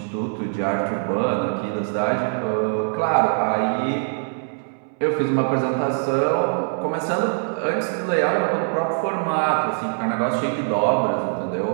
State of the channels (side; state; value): left; silent; 62 dB below the other